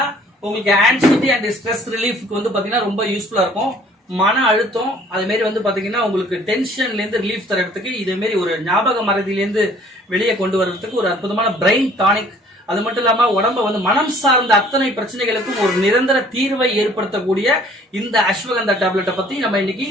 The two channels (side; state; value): both; normal; correlation 0.56